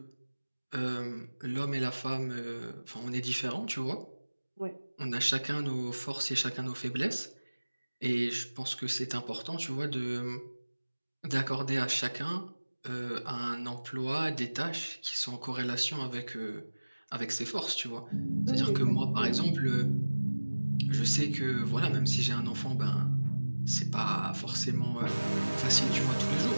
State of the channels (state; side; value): inverted; both; correlation -1.00